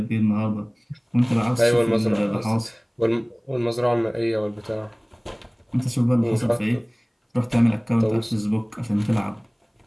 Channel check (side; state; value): both; identical; correlation 1.00